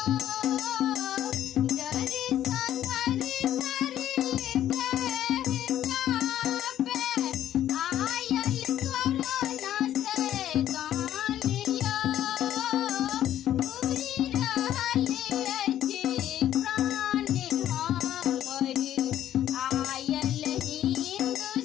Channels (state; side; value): quieter; right; 11.7 dB